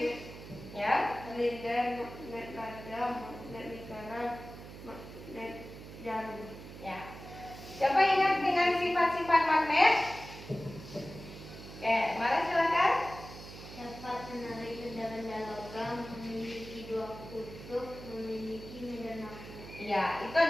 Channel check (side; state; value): right; noise; hum, 14 dB below the sound